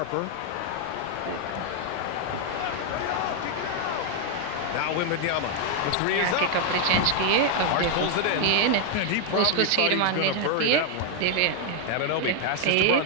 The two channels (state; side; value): different; both; correlation 0.00